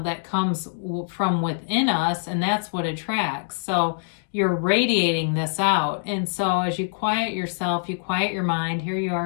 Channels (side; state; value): right; silent; digital silence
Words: that comes from within us, and that's what attracts. So you're radiating this out. And so as you quiet yourself, you quiet your mind, here you